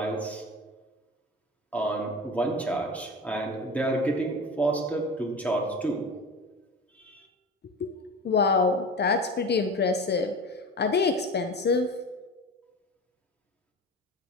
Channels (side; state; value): both; normal; correlation 0.31